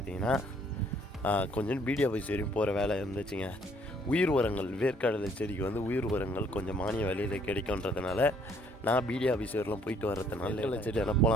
கொஞ்சம் பிடிஓ ஆஃபீஸ் வரையும் போகிற வேலை இருந்துச்சுங்க. உயிர் உரங்கள், வேர்க்கடலை செடிக்கு வந்து உயிர் உரங்கள் கொஞ்சம் மானிய விலையில் கிடைக்குன்றதுனால நான் பிடிஓ ஆஃபீஸ் வரலாம் போயிட்டு வர்றதுனால வேர்க்கடலை செடியான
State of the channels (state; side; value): normal; both; correlation 0.63